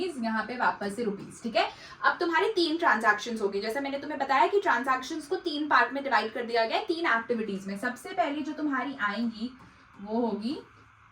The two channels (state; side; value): identical; both; correlation 1.00